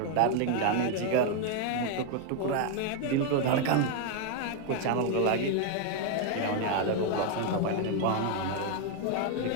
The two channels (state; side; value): different; both; correlation 0.01